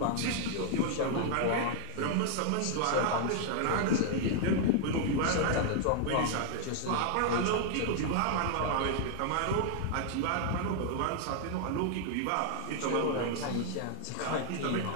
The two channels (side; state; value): both; different; correlation 0.00